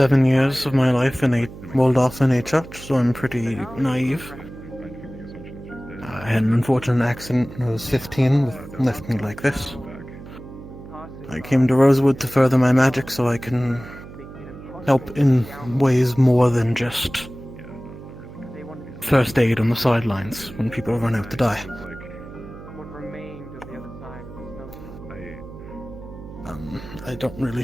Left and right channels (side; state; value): right; noise; hum, 15 dB below the sound